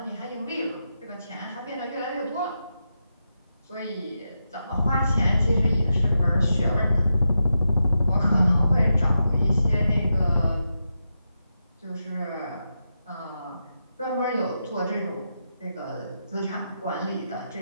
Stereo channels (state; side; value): inverted; both; correlation -0.87